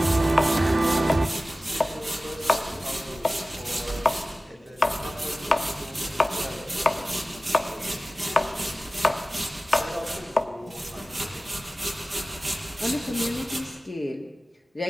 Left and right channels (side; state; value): both; normal; correlation 0.96